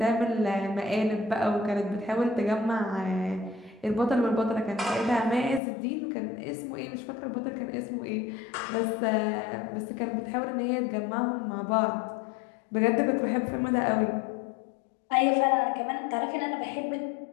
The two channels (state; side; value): drops out; right; at 5.6 s